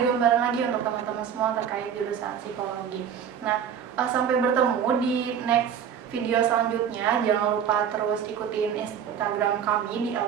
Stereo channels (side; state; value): left; quieter; 8.2 dB